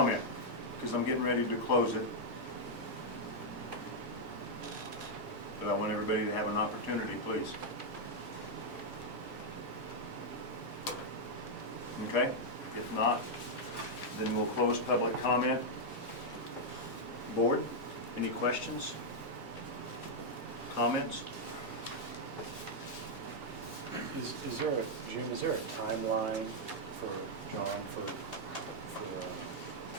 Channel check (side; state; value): both; normal; correlation -0.03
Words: Because I'm getting ready to close it. But I want everybody to have an opportunity, please. Okay? If not, then we'll close public comment. Board, any questions? Comments? Is there a, Jim, is there a timeline for John for